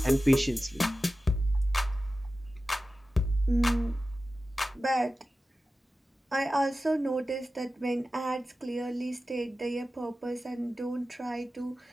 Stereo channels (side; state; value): both; normal; correlation 0.94